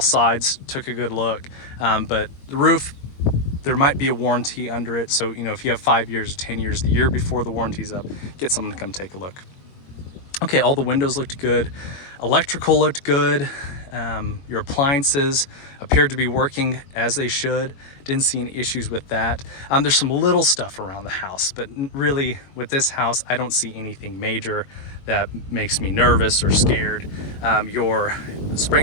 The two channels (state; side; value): late; right; 22 ms